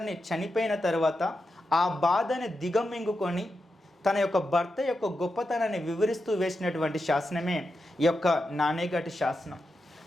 చనిపోయిన తర్వాత ఆ బాధని దిగమింగుకొని తన యొక్క భర్త యొక్క గొప్పతనాన్ని వివరిస్తూ వేసినటువంటి శాసనమే ఈ యొక్క నాణేగడి శాసనం.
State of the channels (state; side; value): normal; both; correlation 0.88